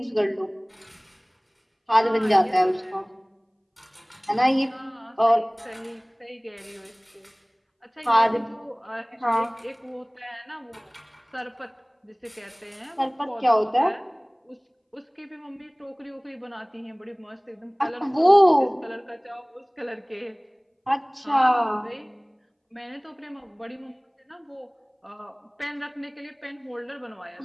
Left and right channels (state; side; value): identical; both; correlation 1.00